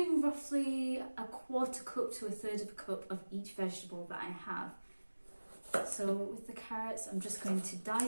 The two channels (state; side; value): inverted; both; correlation -1.00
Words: roughly a quarter cup to a third of a cup of each vegetable that I have. So with the carrots, I'm just going to